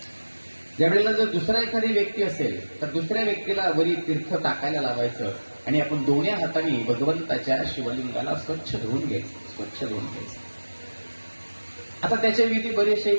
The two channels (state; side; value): inverted; both; correlation -1.00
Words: ज्यावेळेला जर दुसरा एखादी व्यक्ती असेल तर दुसऱ्या व्यक्तीला वरी तीर्थ टाकायला लावायचं आणि आपण दोन्ही हाताने भगवंताच्या शिवलिंगाला स्वच्छ धुवून घ्यायचं. आता त्याच्या विधी बरेचसे